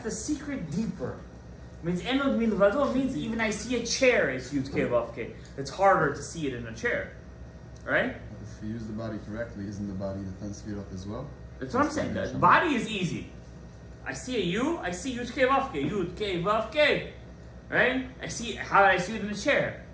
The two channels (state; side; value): identical; both; correlation 1.00